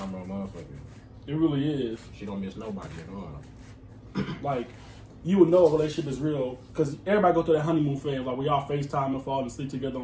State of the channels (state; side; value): identical; both; correlation 1.00